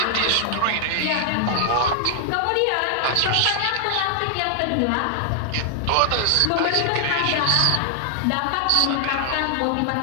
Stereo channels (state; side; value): different; both; correlation 0.00